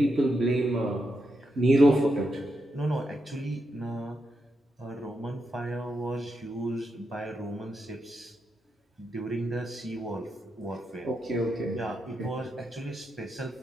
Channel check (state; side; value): normal; both; correlation 0.84